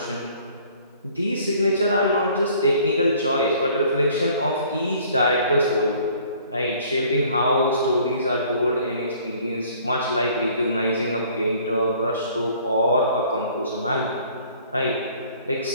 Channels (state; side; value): inverted; both; correlation -0.55